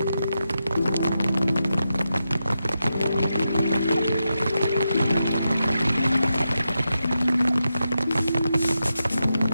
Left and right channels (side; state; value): both; inverted; correlation -0.88